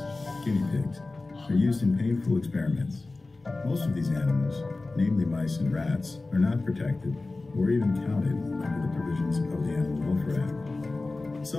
guinea pigs, are used in painful experiments. Most of these animals, namely mice and rats, are not protected or even counted under the provisions of the Animal Welfare Act.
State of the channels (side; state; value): right; quieter; 3.3 dB